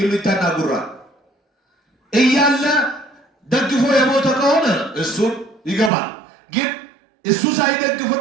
ጉራ እያለ ደግፎ የሞተ ከሆነ እሱን ይገባል። ግን እሱ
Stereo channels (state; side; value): drops out; left; at 5.9 s